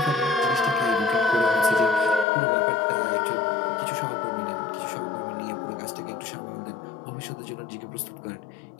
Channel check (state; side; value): drops out; right; at 2.2 s